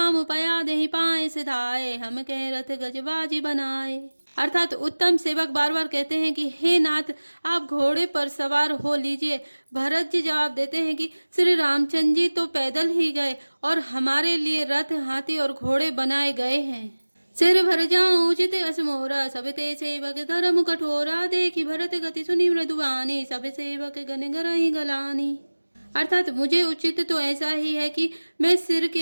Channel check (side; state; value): both; inverted; correlation -1.00